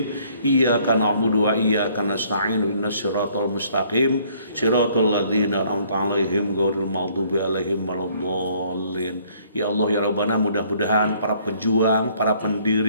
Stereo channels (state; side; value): inverted; both; correlation -0.62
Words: Iyyaka na'budu wa iyyaka nasta'in ihdinas siratal mustaqim siratal ladzina an'amta 'alaihim ghairil maghdubi 'alaihim waladdallin. Ya Allah ya Rabbana, mudah-mudahan para pejuang, para